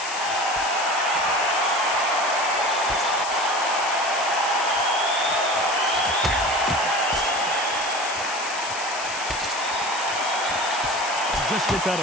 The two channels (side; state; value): left; noise; hiss, 8 dB below the sound